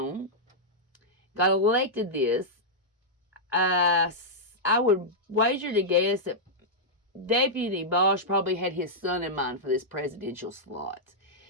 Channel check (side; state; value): both; normal; correlation -0.08